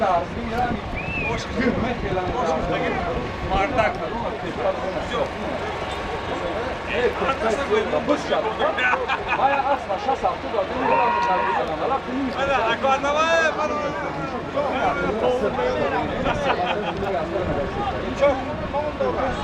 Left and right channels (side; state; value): both; identical; correlation 1.00